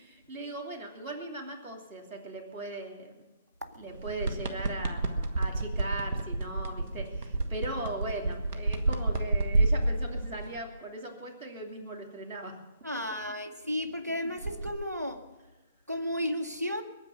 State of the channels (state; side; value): inverted; both; correlation -0.77